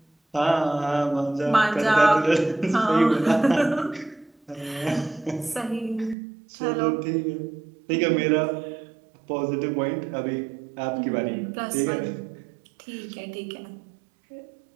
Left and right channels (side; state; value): left; drops out; at 6.2 s